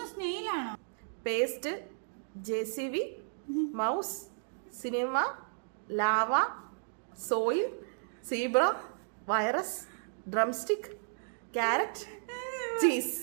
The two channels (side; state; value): left; silent; digital silence